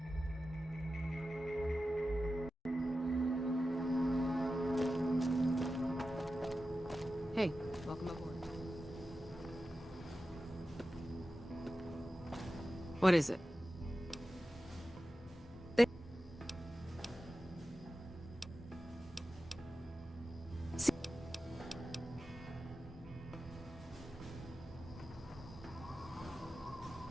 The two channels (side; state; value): both; normal; correlation 0.93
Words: Hey, welcome aboard. What is it?